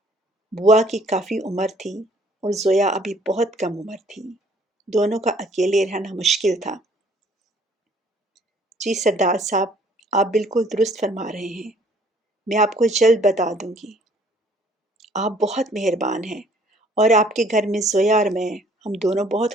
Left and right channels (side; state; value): both; normal; correlation 0.59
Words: بوا کی کافی عمر تھی اور زویا ابھی بہت کم عمر تھی۔ دونوں کا اکیلے رہنا مشکل تھا۔ جی سردار صاحب، آپ بالکل درست فرما رہے ہیں۔ میں آپ کو جلد بتا دوں گی۔ آپ بہت مہربان ہیں اور آپ کے گھر میں زویا اور میں، ہم دونوں بہت